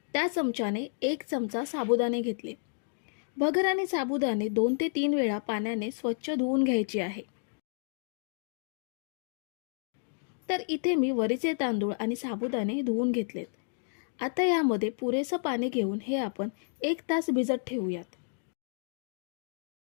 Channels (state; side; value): silent; right; digital silence